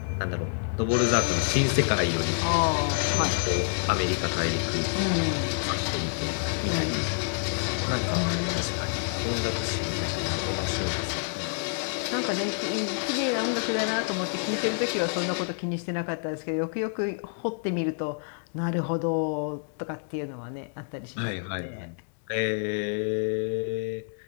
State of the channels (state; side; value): silent; right; digital silence